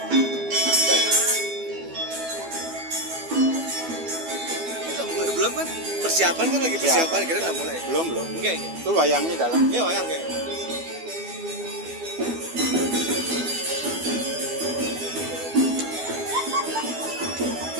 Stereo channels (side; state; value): left; late; 12 ms